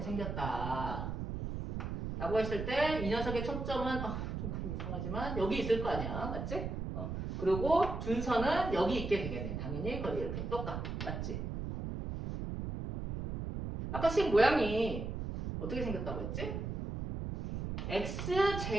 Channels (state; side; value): noise; right; rumble, 4 dB below the sound